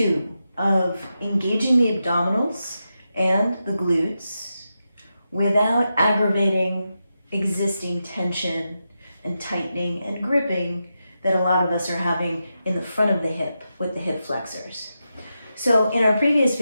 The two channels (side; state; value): both; inverted; correlation -0.88